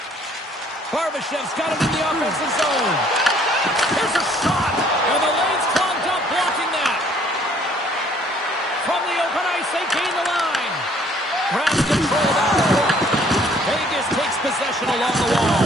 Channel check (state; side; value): normal; both; correlation 0.60